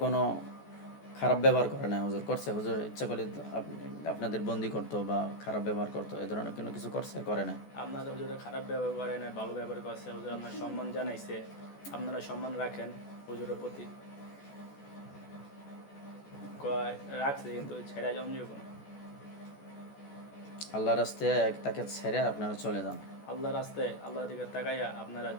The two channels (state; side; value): late; right; 14 ms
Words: কোনো খারাপ ব্যবহার করে না হুজুর? করছে হুজুর? ইচ্ছা করলে আপনাদের বন্দি করতো বা খারাপ ব্যবহার করতো, এ ধরনের কোনো কিছু করছে? করে না। আপনাদের হুজুর খারাপ ব্যবহার করে না, ভালো ব্যবহার করছে। হুজুর আপনার সম্মান জানাইছে, আপনারা সম্মান রাখেন হুজুরের প্রতি। রাখছে কিন্তু ছেড়া জমজিও কোনো। আল্লাহর রাস্তায় তাকে ছেড়ে আপনারা চলে যান। আল্লাহ রাস্তায় আল্লাহর দিকে তাকাইয়া আপনারা